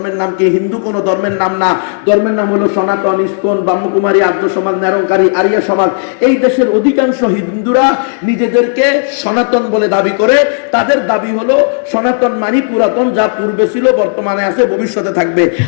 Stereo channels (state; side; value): silent; right; 63 dB below the other